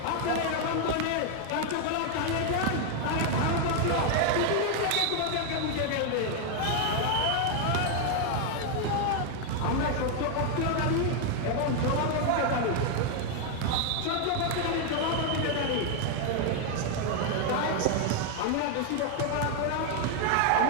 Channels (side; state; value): both; different; correlation 0.01